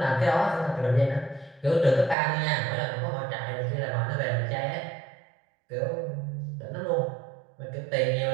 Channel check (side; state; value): left; drops out; at 2.1 s